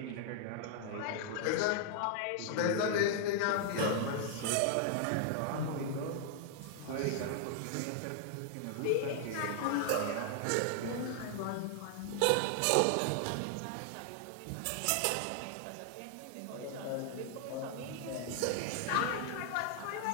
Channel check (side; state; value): both; different; correlation 0.00